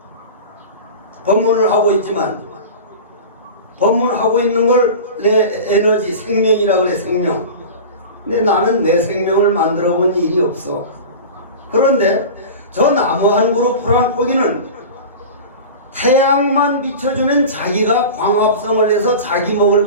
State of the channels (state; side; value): inverted; both; correlation -0.33